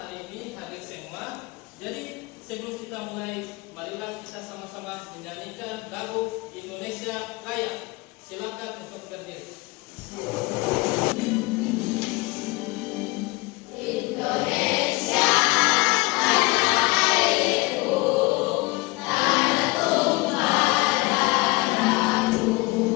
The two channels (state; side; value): quieter; right; 23.9 dB